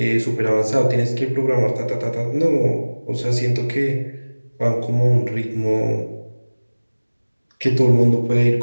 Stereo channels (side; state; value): both; inverted; correlation -1.00